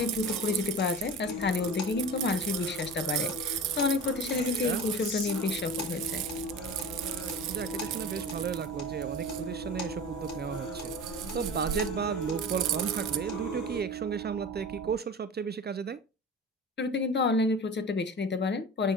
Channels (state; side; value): normal; both; correlation 0.33